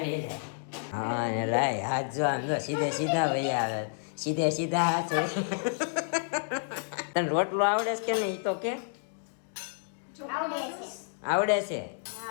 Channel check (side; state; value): right; silent; digital silence